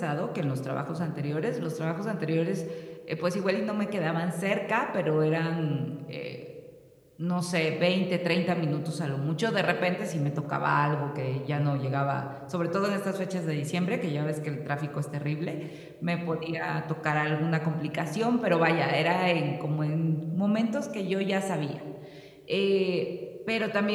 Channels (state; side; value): identical; both; correlation 1.00